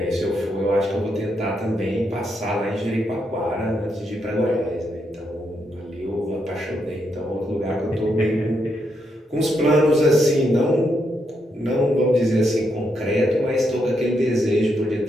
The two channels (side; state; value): both; normal; correlation 0.80